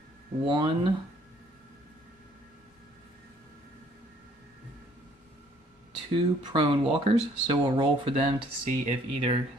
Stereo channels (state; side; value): normal; both; correlation 0.61